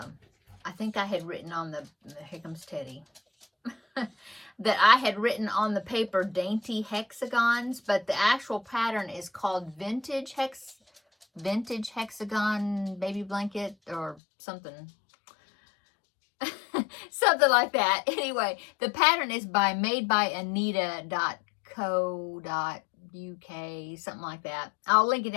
think I had written on here comes Teddy, that I had written on the paper dainty hexagons, but the actual pattern is called vintage hexagon baby blanket or something. Something like that. Anyway, the pattern is made by Anita.co.uk, something like that. I'll link it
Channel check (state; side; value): drops out; right; at 14.2 s